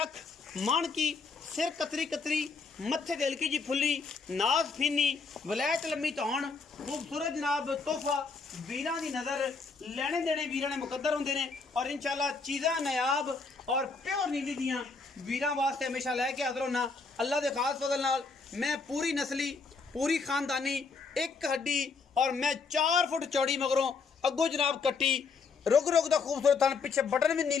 मान की सिर कतरी कतरी मत्थे ते हल्की जी फुल्ली नाज फीनी वलैत लम्मी धौन खूबसूरत जनाब तोहफा वीरां दी नज़र लेने देने वीरां ने मुकद्दर होंदे ने और इंशाल्लाह चीज़ां नायाब और प्योर नीली दियां वीरां वास्ते हमेशा लैके हाज़र होना अल्लाह दे खास फजल नाल। मैं पूरी नस्ली पूरी खानदानी एक हड्डी और मैं 4 फुट चौड़ी मगरों अगों जनाब कट्टी रुग रुग दा खूबसूरत थन पिछे बटन भी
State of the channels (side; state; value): right; quieter; 4.6 dB